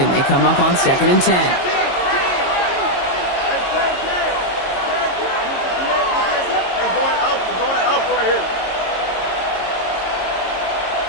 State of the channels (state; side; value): late; right; 22 ms